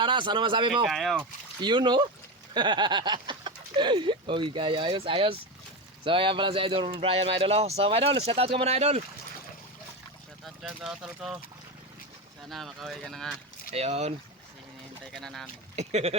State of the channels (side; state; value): both; normal; correlation 0.17